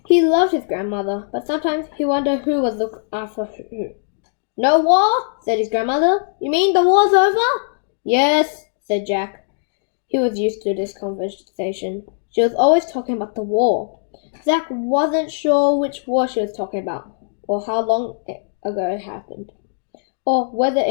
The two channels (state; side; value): silent; right; digital silence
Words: He loved his grandmother, but sometimes he wondered who was looking after who. "No war?" said his grandmother. "You mean the war's over?" "Yes," said Jack. He was used to this conversation. She was always talking about the war. Zach wasn't sure which war she was talking about, or how long ago it happened, or whether